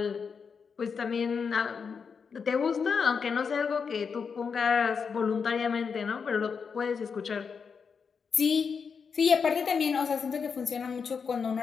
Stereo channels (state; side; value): quieter; right; 5.9 dB